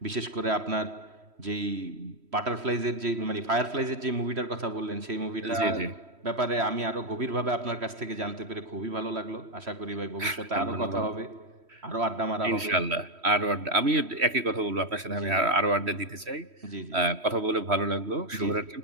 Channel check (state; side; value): late; left; 3.1 ms